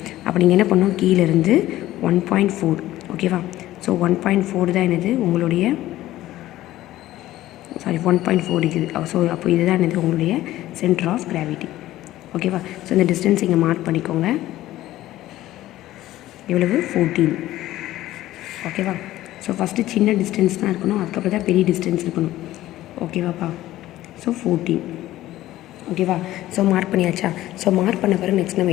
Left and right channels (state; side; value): quieter; right; 15.1 dB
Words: அப்போ நீங்கள் என்ன பண்ணணும், கீழேருந்து 1.4. ஓகேவா? ஸோ 1.4 தான் என்னது உங்களுடைய 1.4 இருக்குது. ஸோ அப்போ இதுதான் என்னது உங்களுடைய சென்டர் ஆஃப் கிராவிட்டி. ஓகேவா? ஸோ இந்த டிஸ்டன்ஸ் இங்கே மார்க் பண்ணிக்கோங்க. எவ்வளவு, 14. ஓகேவா? ஸோ ஃபஸ்ட்டு சின்ன டிஸ்டன்ஸ் தான் இருக்கணும், அதுக்கப்புறம் தான் பெரிய டிஸ்டன்ஸ் இருக்கணும். ஓகேவாப்பா? ஸோ 14. ஓகேவா? ஸோ மார்க் பண்ணியாச்சா? ஸோ மார்க் பண்ண பிறகு நெக்ஸ்ட் நம்ம